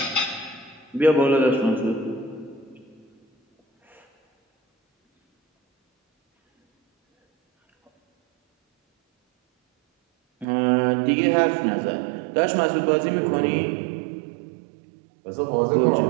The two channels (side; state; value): left; drops out; at 10.5 s